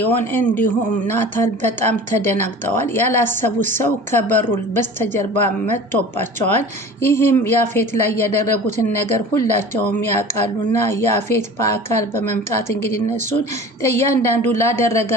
እንዲሁም ናታል በጣም ተደናግጠዋል። ያላሰቡት ሰው ከበሩ በስተጀርባ መጥቶባቸዋል። ይህም ያፌት ላይ ያደረጉትን ነገር ሁላቸውም ያውቃሉና ያፌት በአካል በመምጣት እንግዲህ እነሱን እያንዳንዱ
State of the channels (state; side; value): normal; both; correlation 0.39